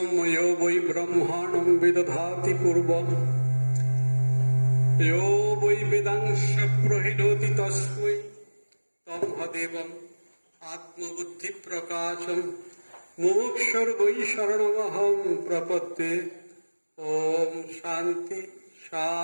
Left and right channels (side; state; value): both; inverted; correlation -1.00